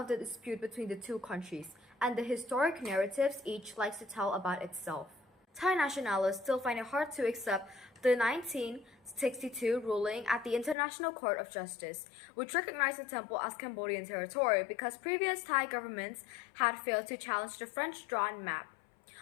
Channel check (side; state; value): right; drops out; at 10.8 s